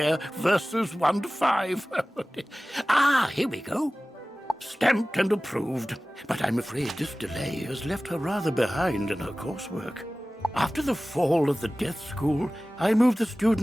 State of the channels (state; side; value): normal; both; correlation 0.97